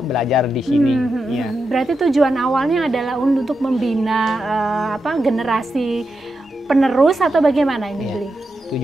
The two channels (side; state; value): both; normal; correlation 0.87